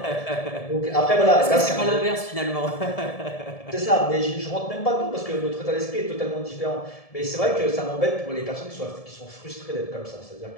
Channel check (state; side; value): late; right; 1.7 ms